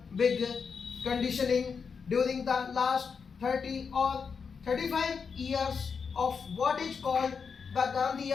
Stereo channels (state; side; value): quieter; right; 5.8 dB